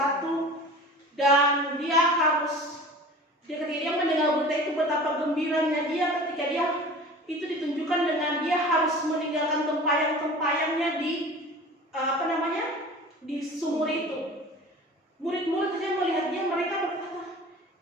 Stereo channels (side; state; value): both; normal; correlation 0.40